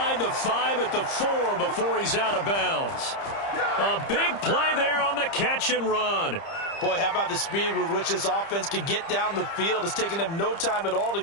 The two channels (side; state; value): right; late; 30 ms